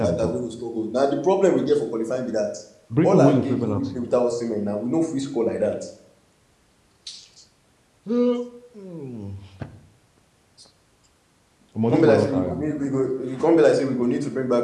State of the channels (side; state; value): both; identical; correlation 1.00